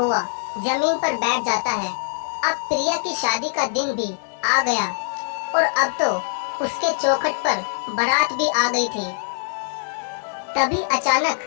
जमीन पर बैठ जाता है। अब प्रिया की शादी का दिन भी आ गया और अब तो उसके चौखट पर बारात भी आ गई थी। तभी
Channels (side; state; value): right; silent; digital silence